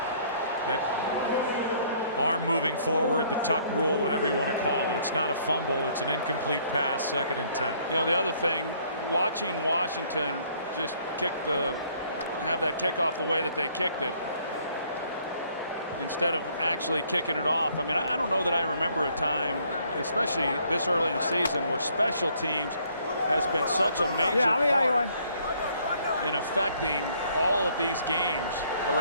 that arm moving forward, the tuck rule, whatever you want to call it. It's not a fumble, it's an incomplete pass, 2nd and 10. The other thing, watching Washington just have that kickoff the way that they kicked it, instead of actually kicking it off. I mean, I don't know that I remember a time, especially this early in the season, where special teams has been such a major part in affecting all of these games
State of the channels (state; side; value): inverted; both; correlation -0.63